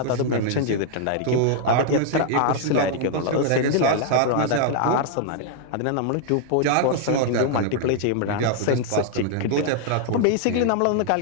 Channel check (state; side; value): different; both; correlation 0.00